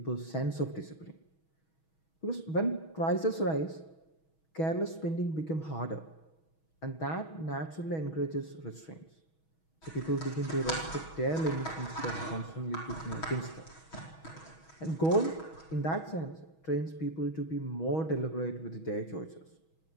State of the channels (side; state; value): right; late; 6.3 ms